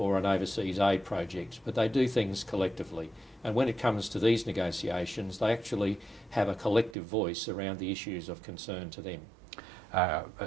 an overseas aid project, but they do things collectively. And when it comes to these negotiations, they actually have a collective voice around the issues of concern to them.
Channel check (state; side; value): drops out; left; at 7.0 s